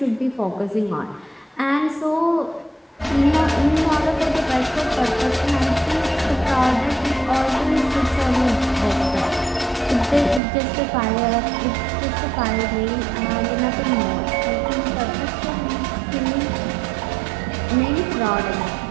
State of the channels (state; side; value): drops out; left; at 10.4 s